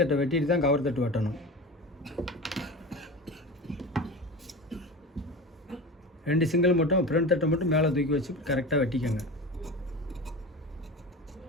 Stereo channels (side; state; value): both; normal; correlation 0.30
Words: வெட்டிட்டு தான் கவர் தட்டு வெட்டணும். 2 சிங்கிள் மட்டும் ஃப்ரண்ட் தட்டை மட்டும் மேலே தூக்கி வச்சு கரெக்டாக வெட்டிக்கோங்க.